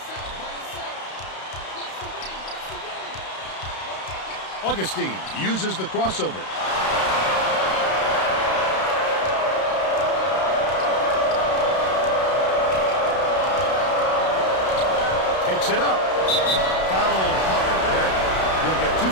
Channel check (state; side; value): late; right; 32 ms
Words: Augustine uses the crossover. Takes it up. Foul hard there. He'll get 2